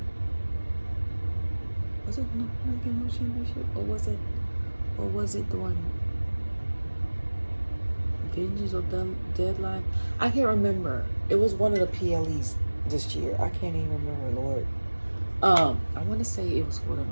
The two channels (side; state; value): both; inverted; correlation -1.00